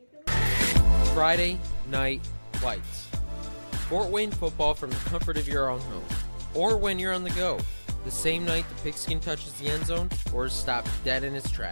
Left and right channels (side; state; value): both; inverted; correlation -1.00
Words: Friday Night Lights. Fort Wayne football from the comfort of your own home. Or when you're on the go. The same night the pigskin touches the end zone or is stopped dead in its